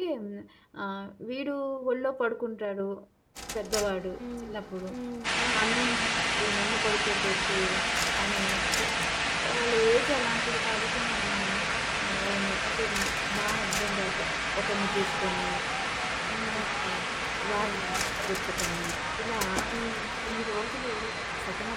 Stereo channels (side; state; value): both; identical; correlation 1.00